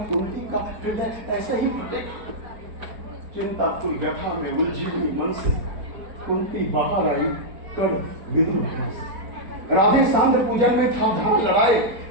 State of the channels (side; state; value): left; late; 4.4 ms